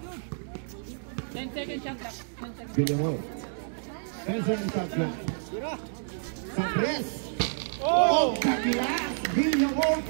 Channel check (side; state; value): left; silent; digital silence